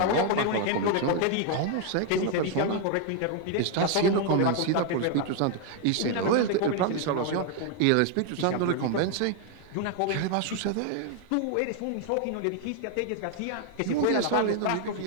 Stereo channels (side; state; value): both; different; correlation 0.00